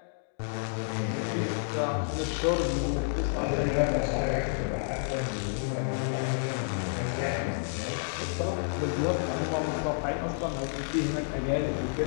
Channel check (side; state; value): right; silent; digital silence